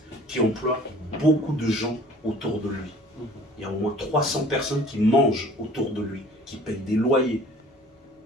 qui emploie beaucoup de gens autour de lui. Il y a au moins 300 personnes qui mangent autour de lui, qui payent des loyers.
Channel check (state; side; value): normal; both; correlation 0.50